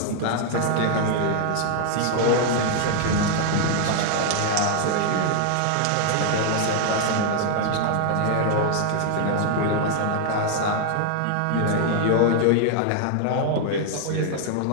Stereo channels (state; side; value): different; both; correlation 0.00